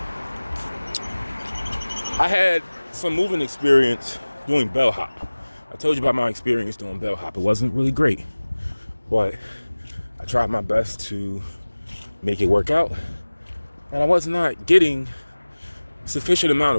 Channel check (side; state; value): both; inverted; correlation -1.00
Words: I had some moving experience doing bellhop. I told you about my experience doing bellhop. It wasn't really great, but I tried my best to make it work out, and I was not getting sufficient amount